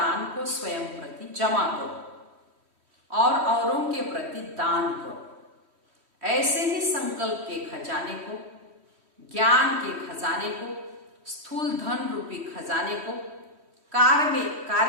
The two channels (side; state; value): left; late; 3.1 ms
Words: को स्वयं प्रति जमा करो और औरों के प्रति दान करो। ऐसे ही संकल्प के खजाने को, ज्ञान के खजाने को, स्थूल धन रूपी खजाने को